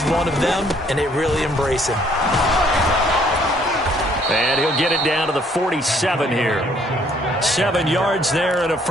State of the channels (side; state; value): both; normal; correlation 0.64